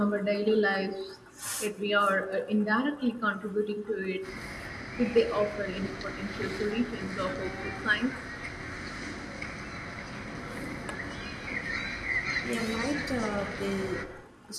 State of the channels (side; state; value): both; identical; correlation 1.00